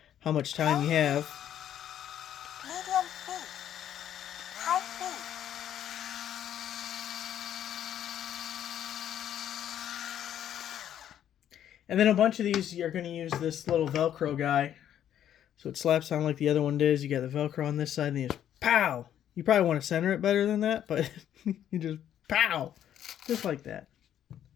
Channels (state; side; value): quieter; right; 10.5 dB